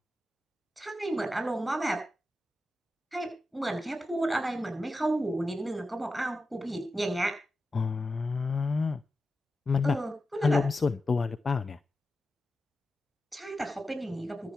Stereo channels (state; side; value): normal; both; correlation 0.91